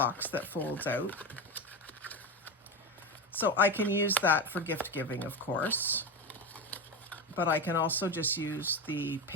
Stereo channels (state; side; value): normal; both; correlation 0.19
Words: that folds out. So I can use that for gift giving, of course, but I can also just use the